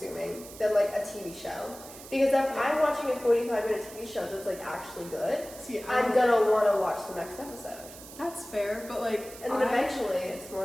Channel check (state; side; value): noise; right; hiss, 16 dB below the sound